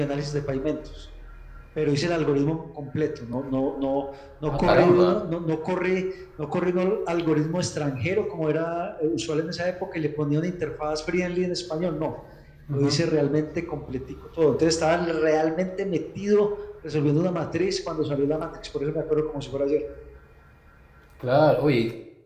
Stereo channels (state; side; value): identical; both; correlation 1.00